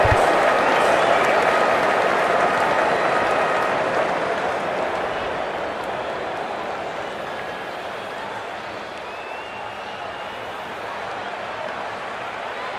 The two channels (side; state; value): both; identical; correlation 1.00